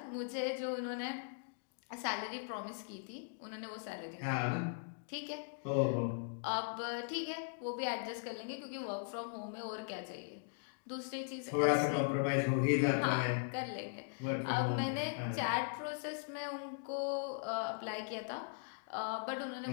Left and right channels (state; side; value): silent; right; digital silence